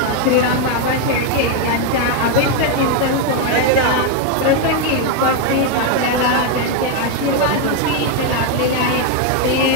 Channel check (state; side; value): different; both; correlation 0.01